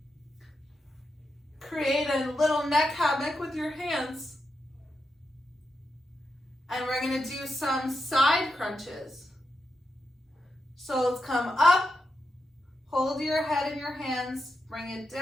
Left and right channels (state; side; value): normal; both; correlation 0.86